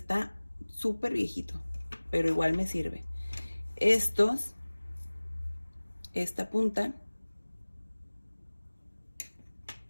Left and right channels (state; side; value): inverted; both; correlation -1.00